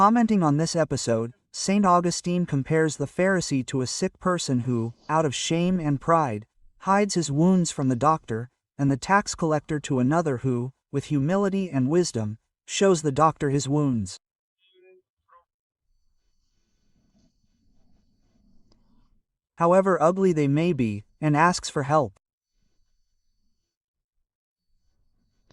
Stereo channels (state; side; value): identical; both; correlation 1.00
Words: on this episode, St. Augustine compares the Pharisee to a sick person who, out of shame and pride, hides his wounds from the doctor, and the tax collector to another who, with humility and wisdom, shows the doctor his wounds. However ugly they may be, and asks for help.